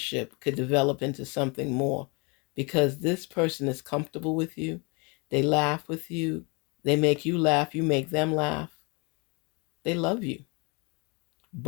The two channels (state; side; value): quieter; right; 30.6 dB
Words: could develop into something more, because this person is comfortable with you. They laugh with you. They make you laugh. You make them laugh. They love you.